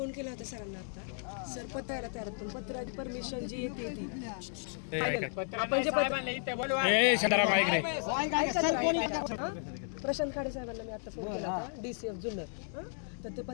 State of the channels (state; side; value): silent; right; 55 dB below the other